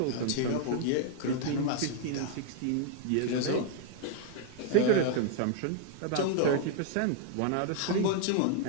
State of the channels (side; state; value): both; different; correlation 0.00